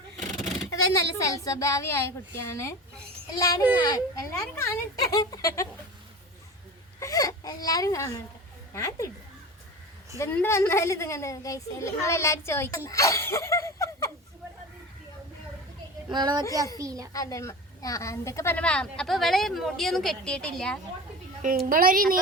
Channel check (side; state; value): both; normal; correlation 0.32